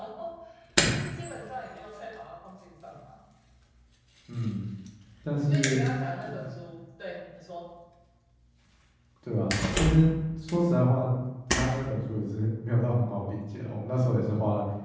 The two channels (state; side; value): identical; both; correlation 1.00